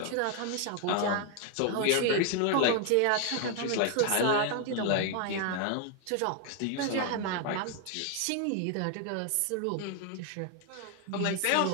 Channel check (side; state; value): both; different; correlation 0.01